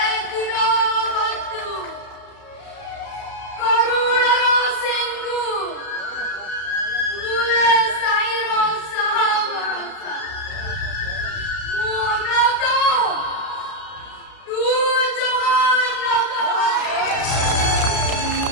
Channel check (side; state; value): right; late; 32 ms